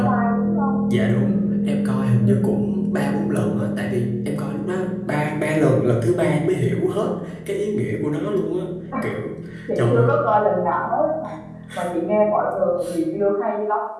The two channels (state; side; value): identical; both; correlation 1.00